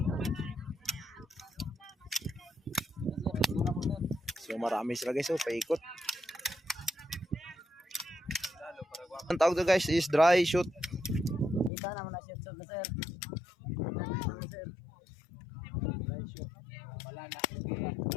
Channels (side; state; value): right; drops out; at 11.7 s